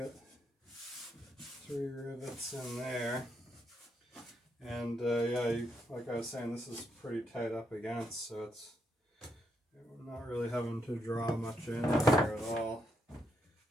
3 rivets in there. And yeah, like I was saying, this is pretty tight up against, so we're not really having to draw much in here at all.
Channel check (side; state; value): both; normal; correlation 0.79